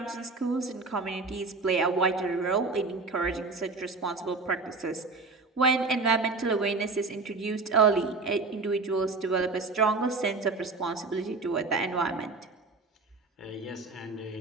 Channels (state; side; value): quieter; left; 3.9 dB